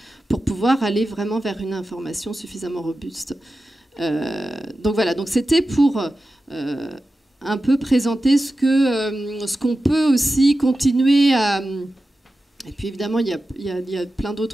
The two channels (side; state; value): both; normal; correlation 0.93